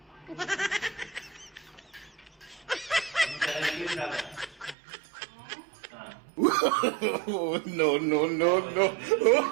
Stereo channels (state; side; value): drops out; left; at 4.8 s